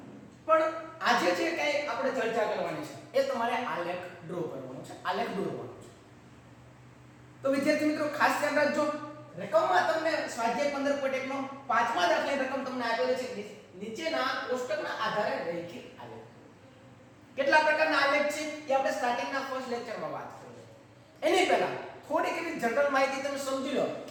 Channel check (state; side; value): identical; both; correlation 1.00